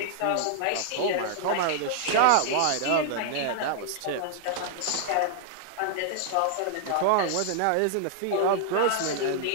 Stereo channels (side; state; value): both; different; correlation -0.01